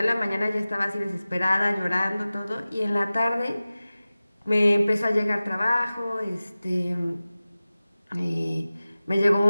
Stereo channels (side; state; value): both; inverted; correlation -0.97